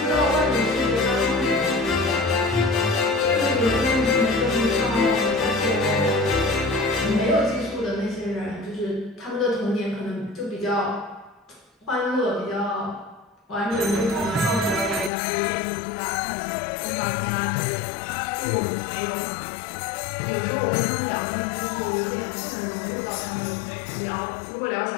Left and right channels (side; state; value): right; drops out; at 15.1 s